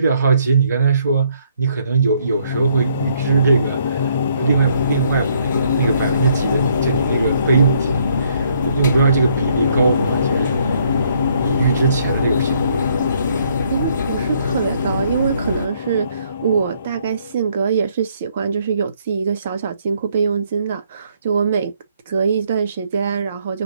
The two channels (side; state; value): both; inverted; correlation -0.68